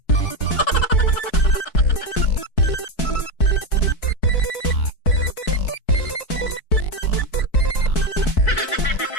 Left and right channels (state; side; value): late; right; 4.6 ms